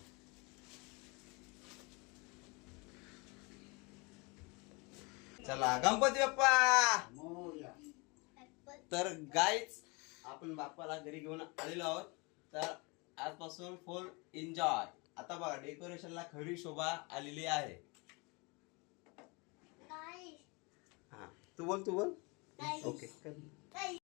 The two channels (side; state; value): right; quieter; 28.7 dB